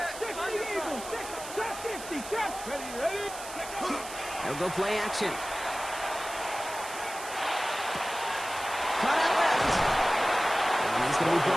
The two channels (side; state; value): right; noise; hiss, 12 dB below the sound